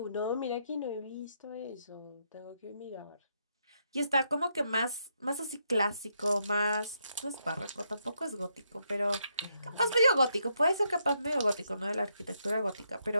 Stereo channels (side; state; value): both; inverted; correlation -0.78